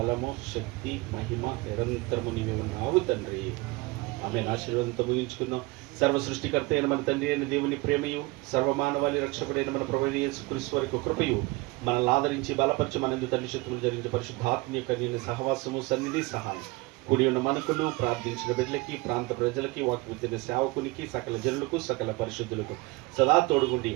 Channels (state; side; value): quieter; left; 23.1 dB